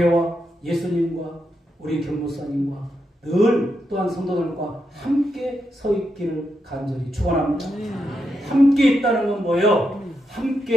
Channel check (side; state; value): both; normal; correlation 0.84